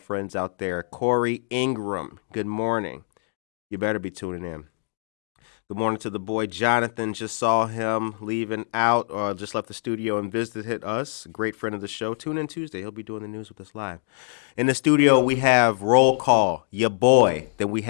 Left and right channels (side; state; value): right; silent; digital silence